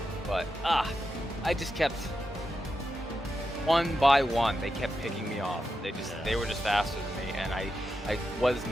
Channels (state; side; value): normal; both; correlation 0.88